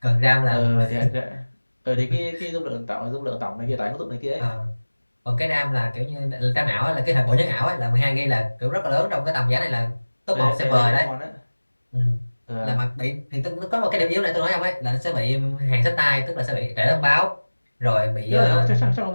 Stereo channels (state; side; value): inverted; both; correlation -1.00